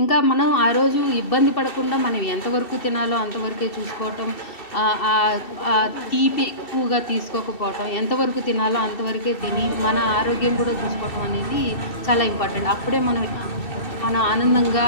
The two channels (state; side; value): late; right; 2.7 ms